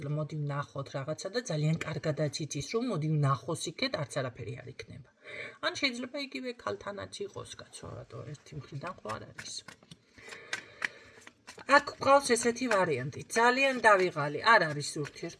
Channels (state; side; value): identical; both; correlation 1.00